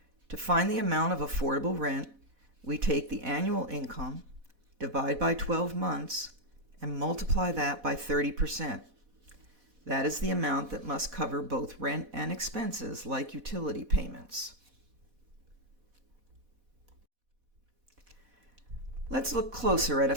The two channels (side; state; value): left; late; 4.1 ms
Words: To find the amount of affordable rent, we take the annual income, divide by 12 months, and multiply that by 30%. That is the amount that must cover both rent and expenses like utility payments. Let's look closer at a